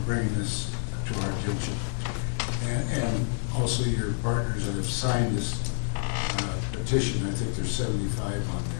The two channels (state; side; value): silent; right; 59 dB below the other